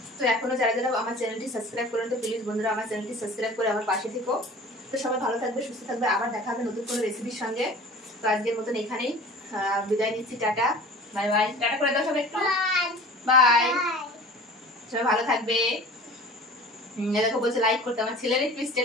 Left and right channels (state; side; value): normal; both; correlation 0.42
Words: তো এখনো যারা যারা আমার চ্যানেলটি সাবস্ক্রাইব করেন, তো প্লিজ বন্ধুরা আমার চ্যানেলটি সাবস্ক্রাইব করে আমার পাশে থেকো। তো সবাই ভালো থাকবে, সুস্থ থাকবে, আবার দেখা হবে নতুন কোনো রেসিপির সঙ্গে। তো আজকের মতন এখানেই বিদায় নিচ্ছি, টাটা বাই বাই। টাটা করে দাও সবাই একটু, বাই। সবাই ভালো থাকবে। দেখো বলছে লাইক করতে, আমার ছেলের একটু